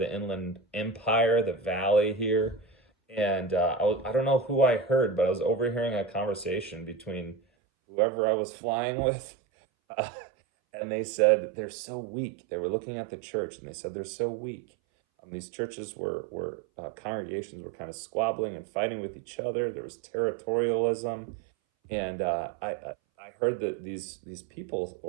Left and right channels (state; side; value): drops out; left; at 7.4 s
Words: Inland Empire, the valley here, and I don't know who I heard, but I was overhearing a conversation between whoever I was flying with. Uh, and they said, they're so weak. They were looking at the church and they said, they're so weak. These churches were congregations were kind of squabbling and fighting with each other. There was territorialism, and I heard that these people